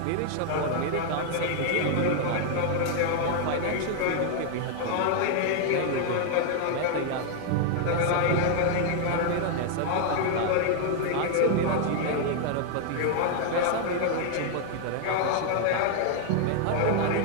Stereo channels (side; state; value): both; different; correlation 0.00